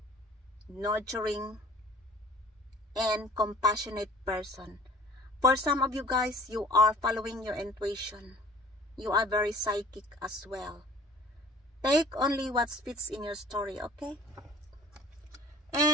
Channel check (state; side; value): normal; both; correlation 0.48